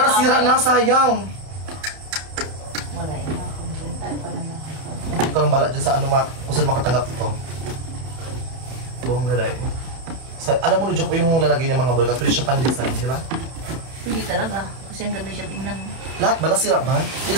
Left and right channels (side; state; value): left; late; 31 ms